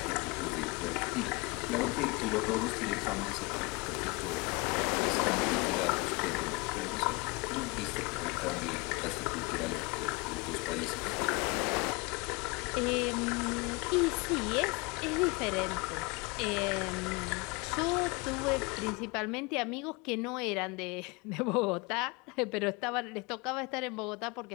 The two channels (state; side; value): quieter; right; 27.3 dB